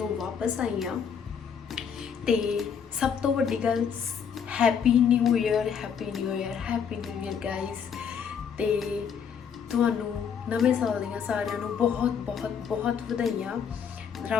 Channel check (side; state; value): right; quieter; 7.2 dB